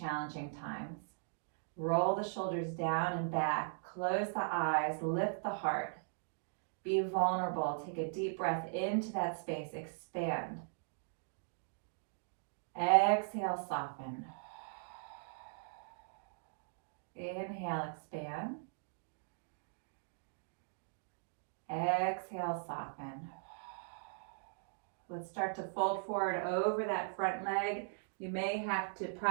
times. Roll the shoulders down and back. Close the eyes. Lift the heart. Be vulnerable. Take a deep breath into that space. Expand. Exhale, soften. Inhale, expand. Exhale, soften. Let's start to fold forward over that front leg. You may have to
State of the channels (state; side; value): silent; left; digital silence